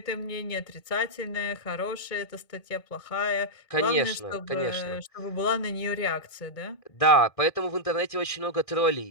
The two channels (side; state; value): right; late; 1.8 ms